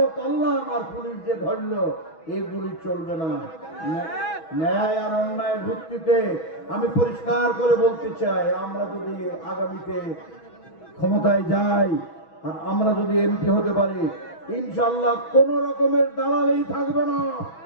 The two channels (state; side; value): late; right; 6.2 ms